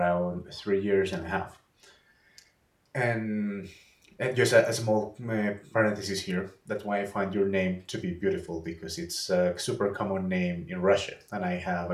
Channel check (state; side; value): identical; both; correlation 1.00